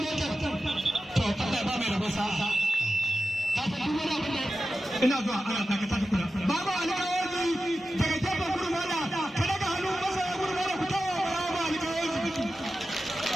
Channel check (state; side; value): normal; both; correlation 0.92